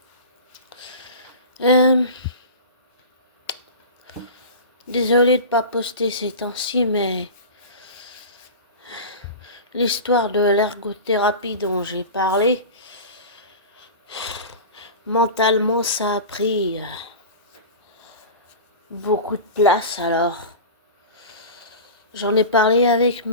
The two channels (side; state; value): both; inverted; correlation -0.31